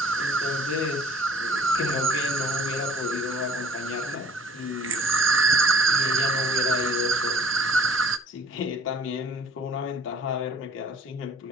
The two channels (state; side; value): normal; both; correlation 0.53